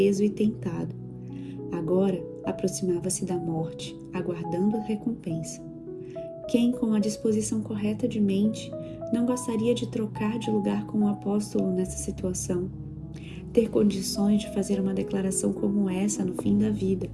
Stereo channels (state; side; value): identical; both; correlation 1.00